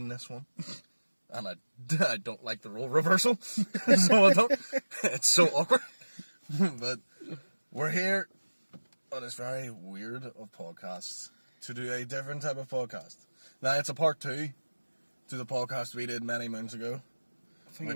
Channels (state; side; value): inverted; both; correlation -1.00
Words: this one, and I don't like the role reversal, so I don't. It's so awkward, but we're here on this very weird of podcasts to do a different type of podcast. Now it's a part 2 to the podcast we did many moons ago. I think